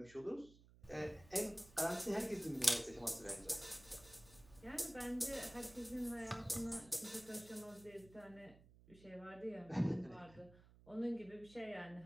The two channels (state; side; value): noise; right; hum, 22 dB below the sound